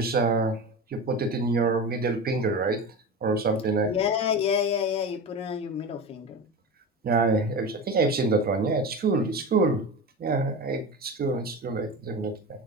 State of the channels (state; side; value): normal; both; correlation 0.27